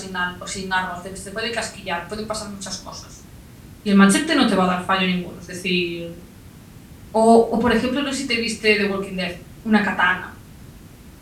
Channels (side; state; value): both; identical; correlation 1.00